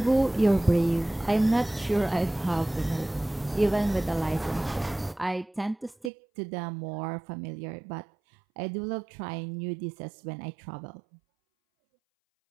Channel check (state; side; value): drops out; left; at 6.1 s